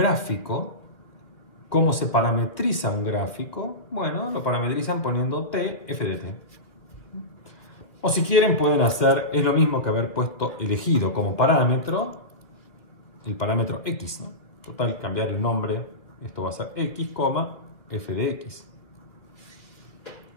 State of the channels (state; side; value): late; right; 2.5 ms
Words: ¿cómo se parametriza un gráfico? Bueno, lo parametrizan poniendo t, f de t. O si quieren pueden hacer, es lo mismo que haber elegido como parámetro el parámetro x, ¿no? Total, cambiar el nombre, esto va a ser x, f de x.